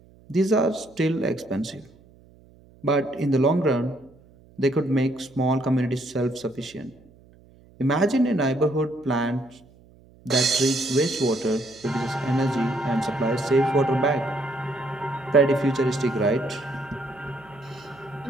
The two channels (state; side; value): noise; right; hum, 27 dB below the sound